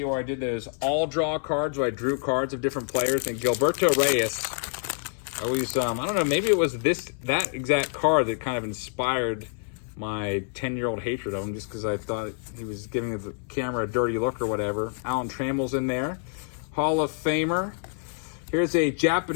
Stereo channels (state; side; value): silent; right; 60 dB below the other